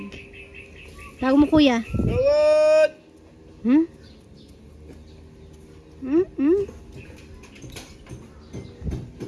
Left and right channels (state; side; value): identical; both; correlation 1.00